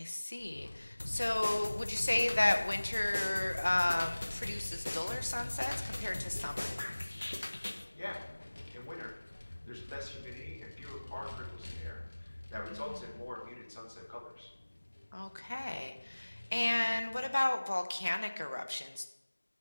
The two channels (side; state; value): both; inverted; correlation -1.00